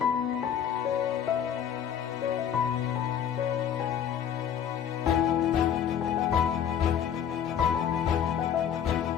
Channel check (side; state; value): right; quieter; 8.9 dB